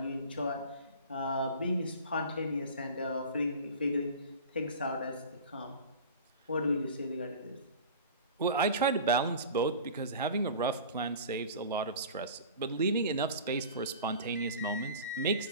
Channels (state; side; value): inverted; both; correlation -0.37